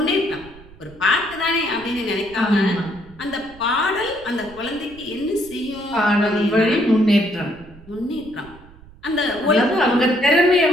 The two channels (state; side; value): noise; right; rumble, 22 dB below the sound